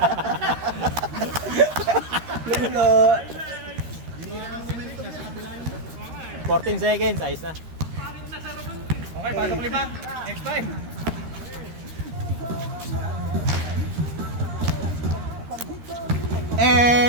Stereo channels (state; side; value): late; left; 13 ms